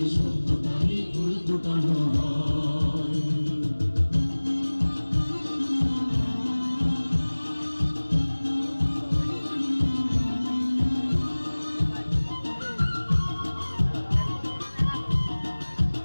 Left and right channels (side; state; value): both; inverted; correlation -1.00